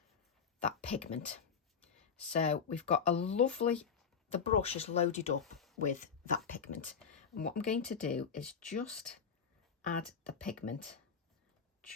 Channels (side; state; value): right; quieter; 6.5 dB